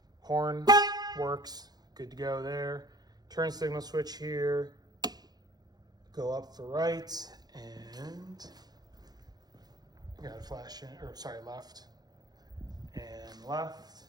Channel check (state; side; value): late; left; 0.19 ms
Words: horn works, good to go there. Turn signal switch here, go up for right, and got a flash in, or sorry, left, and left,